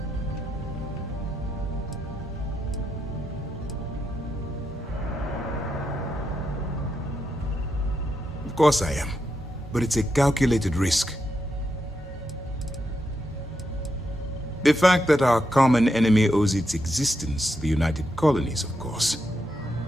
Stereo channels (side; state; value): both; normal; correlation 0.83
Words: Of course I am, but it's a calculated risk. The fact that our common enemy owes its existence to the United Colonies, of course.